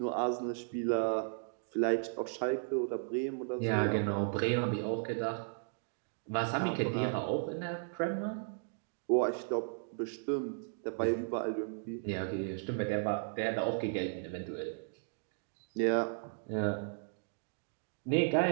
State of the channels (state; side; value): silent; left; digital silence